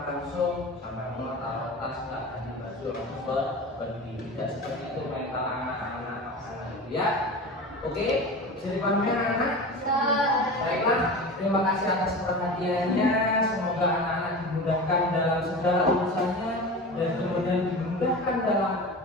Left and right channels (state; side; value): normal; both; correlation 0.31